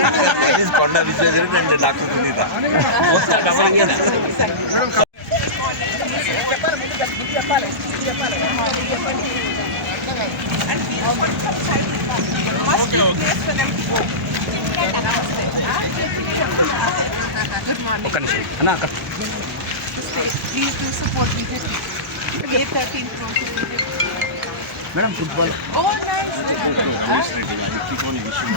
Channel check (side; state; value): both; normal; correlation -0.18